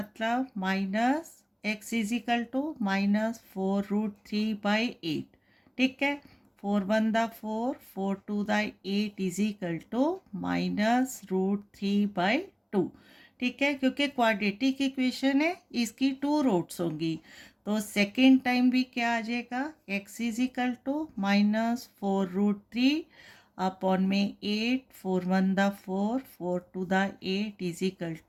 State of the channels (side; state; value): both; identical; correlation 1.00